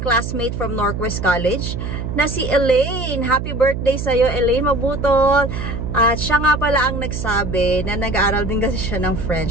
classmate from Northwest College na si Elaine. Happy birthday sa'yo, Elaine Mabutol. At siya nga pala ang nagsabi na nag-aaral din kasi siya ng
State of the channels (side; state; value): right; noise; hum, 5 dB below the sound